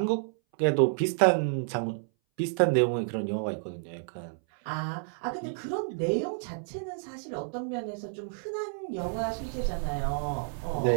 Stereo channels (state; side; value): silent; left; 58 dB below the other